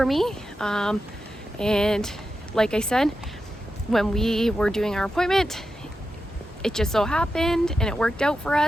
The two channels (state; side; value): normal; both; correlation 0.90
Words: me, and like I said, when we were doing our appointment, it just so happened and it worked out for